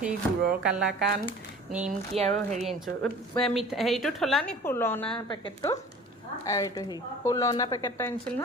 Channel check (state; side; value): normal; both; correlation 0.44